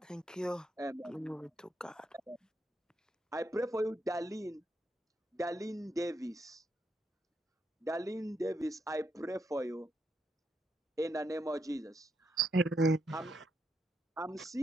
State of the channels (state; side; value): normal; both; correlation 0.80